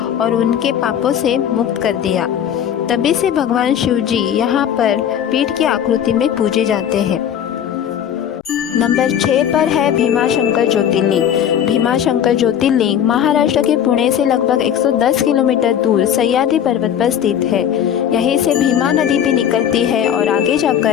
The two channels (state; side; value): quieter; right; 9.3 dB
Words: और उनके पापों से मुक्त कर दिया। तभी से भगवान शिव जी यहाँ पर पीठ की आकृति में पूजे जाते हैं। नंबर 6 पर है भीमाशंकर ज्योतिर्लिंग। भीमाशंकर ज्योतिर्लिंग महाराष्ट्र के पुणे से लगभग 110 किलोमीटर दूर सह्याद्री पर्वत पर स्थित है। यहीं से भीमा नदी भी निकलती है और आगे